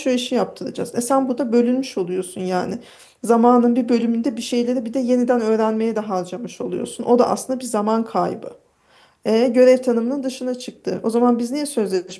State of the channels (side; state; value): both; identical; correlation 1.00